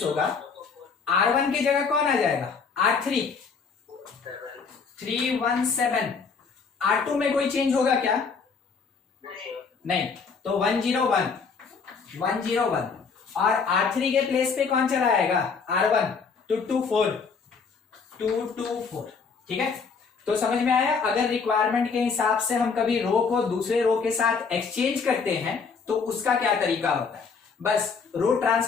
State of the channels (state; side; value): quieter; right; 5.3 dB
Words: होगा, R1 की जगह कौन आ जाएगा, R3 3 1 7। R2 में कोई चेंज होगा क्या, नहीं, तो 1 0 1 1 0 1 और R3 के प्लेस पे कौन चला आएगा, R1 2 2 4 2 2 4। ठीक है, तो समझ में आया। अगर रिक्वायरमेंट के हिसाब से हम कभी रो को दूसरे रो के साथ एक्सचेंज करते हैं तो उसका क्या तरीका होता है। बस रो